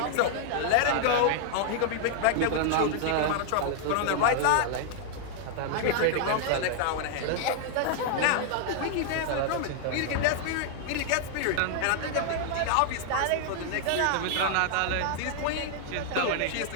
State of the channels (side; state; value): both; different; correlation 0.00